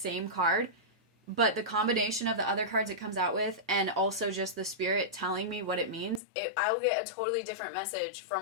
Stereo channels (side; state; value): right; drops out; at 6.2 s